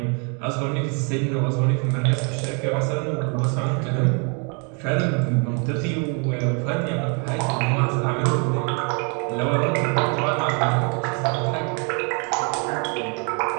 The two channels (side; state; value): left; quieter; 36.4 dB